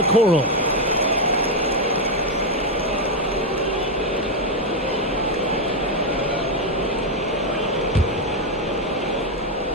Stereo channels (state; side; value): normal; both; correlation 0.04